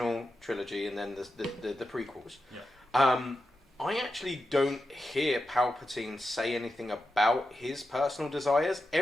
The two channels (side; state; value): both; normal; correlation 0.89